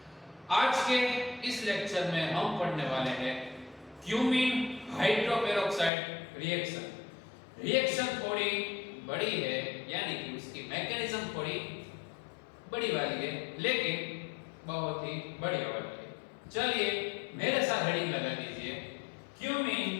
आज के इस लेक्चर में हम पढ़ने वाले हैं क्यूमीन हाइड्रोपेरोक्साइड रिएक्शन। रिएक्शन थोड़ी बड़ी है, यानी कि उसकी मैकेनिज्म थोड़ी बड़ी वाली है, लेकिन बहुत ही बढ़िया वाली है। चलिए मेरे साथ हेडिंग लगा दीजिए, cumene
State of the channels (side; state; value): right; drops out; at 5.9 s